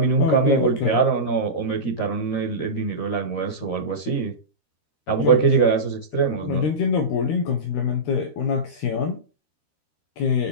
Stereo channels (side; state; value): right; late; 13 ms